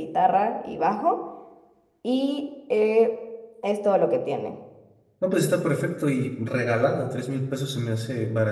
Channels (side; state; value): both; identical; correlation 1.00